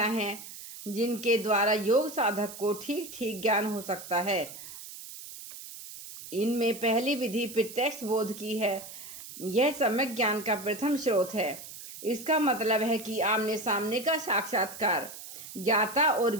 हैं जिनके द्वारा योग साधक को ठीक ठीक ज्ञान हो सकता है। इनमें पहली विधि प्रत्यक्ष बोध की है। यह सम्यक ज्ञान का प्रथम स्रोत है। इसका मतलब है कि आमने सामने का साक्षात्कार। ज्ञाता और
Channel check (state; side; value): noise; right; hiss, 13 dB below the sound